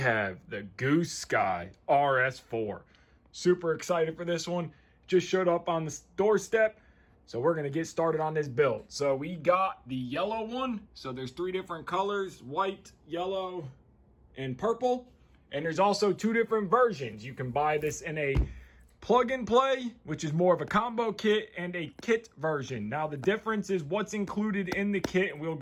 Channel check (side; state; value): both; identical; correlation 1.00